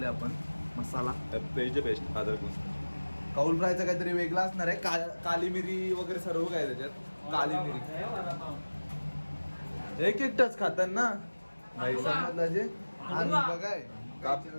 आपण. मसाला बेस्ट कौल फ्रायचा काहीतरी वेगळा असणार आहे. काली मिरी वगैरे सर्व काय त्याच्यात. काली मिरी एक टच खातात ना भाई. समजलं बघाय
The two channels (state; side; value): inverted; both; correlation -1.00